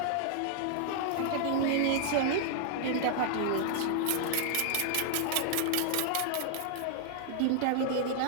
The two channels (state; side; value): different; both; correlation -0.01